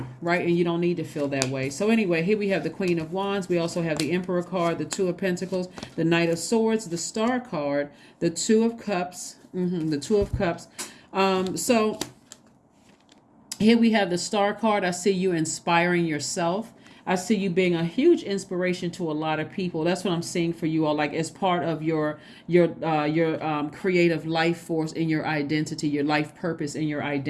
right? And you don't need to feel that way. So anyway, here we have the Queen of Wands. We also have the Emperor card, the Two of Pentacles, the Knight of Swords, the Star card, the Two of Cups, the Two of Cups. So here we have the Star card. I see you inspiring yourself. I see you being a huge inspiration to a lot of people. That's what I'm seeing for you all, like as part of your creative life force and your identity, your life purpose and your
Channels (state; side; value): identical; both; correlation 1.00